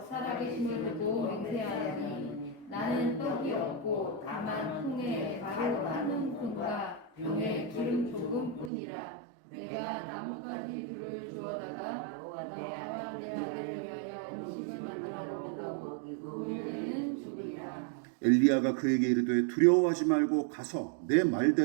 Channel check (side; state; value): left; drops out; at 8.7 s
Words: 살아계심을 두고 맹세하노니 나는 떡이 없고 다만 통에 가루 한 움큼과 병에 기름 조금뿐이라. 내가 나뭇가지 둘을 주어다가 나와 내 아들을 위하여 음식을 만들어 먹고 그 문제는 죽으리라. 엘리야가 그에게 이르되 두려워하지 말고 가서 내